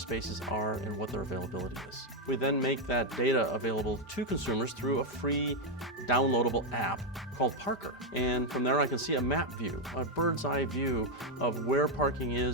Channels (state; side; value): normal; both; correlation 0.03